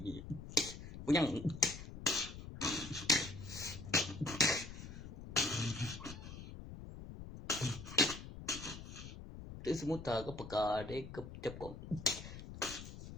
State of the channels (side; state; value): left; noise; rumble, 11 dB below the sound